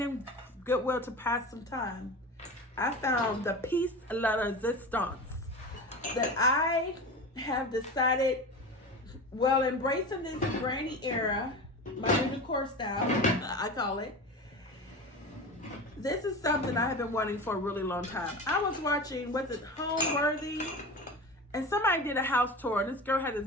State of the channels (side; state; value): both; normal; correlation 0.30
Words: in Goodwill to pass some time, I found the piece de resistance that I have decided, well, embracing this granny era, my new decor style, I call it. This is something I have been wanting for a really long time. I was watching, was it Homeworthy? And somebody did a house tour, and this girl had